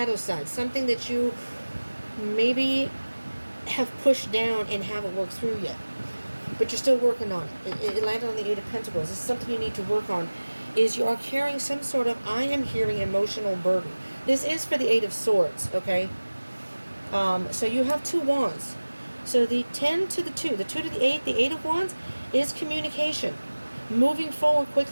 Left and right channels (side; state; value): both; inverted; correlation -1.00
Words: side, something that you maybe have pushed down and haven't worked through yet, but you're still working on it. It landed on the Eight of Pentacles. This is something you need to work on, is you are carrying some sort of, I am hearing, emotional burden. This is for the Eight of Swords, okay? So you have 2 wands. So the 10 to the 2 to the 8, the Eight of Wands, is communication, moving forward